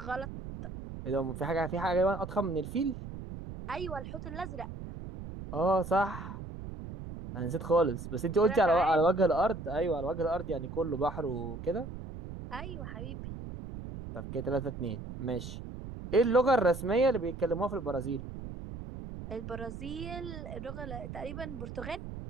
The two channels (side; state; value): right; noise; rumble, 9 dB below the sound